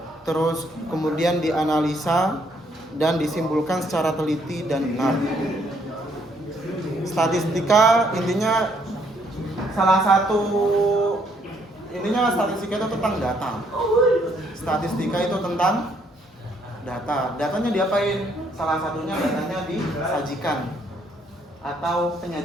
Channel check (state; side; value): normal; both; correlation 0.69